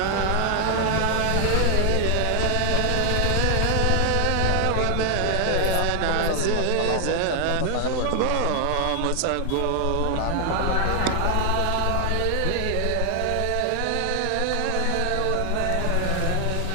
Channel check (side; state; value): both; different; correlation 0.00